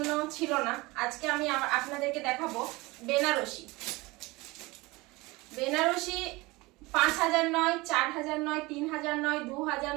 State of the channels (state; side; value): quieter; left; 22.5 dB